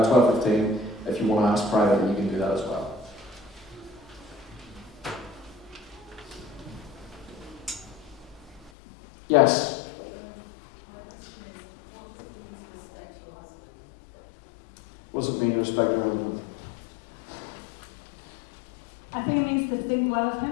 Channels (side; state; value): right; drops out; at 8.7 s